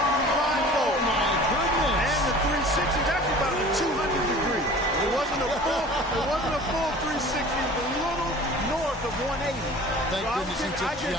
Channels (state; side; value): normal; both; correlation 0.44